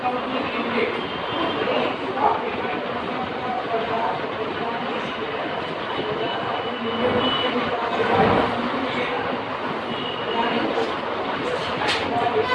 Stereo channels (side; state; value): both; identical; correlation 1.00